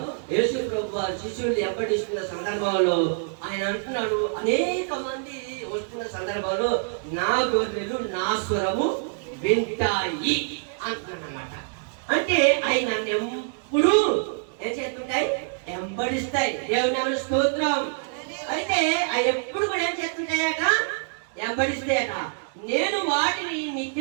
యేసు ప్రభు వారు శిష్యులు వెంబడిస్తున్న సందర్భంలో ఆయన అంటున్నాడు, అనేక మంది వస్తున్న సందర్భంలో నా గొర్రెలు నా స్వరము వింటాయి అంటున్నాడు అన్నమాట. అంటే అవి నన్ను ఎప్పుడు ఏం చేస్తుంటాయి? వెంబడిస్తాయి. దేవుని నామమున స్తోత్రం. అయితే అవి ఎప్పుడు కూడా ఏం చేస్తుంటాయట? వెంబడిస్తాయట. నేను వాటిని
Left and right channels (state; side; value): silent; left; digital silence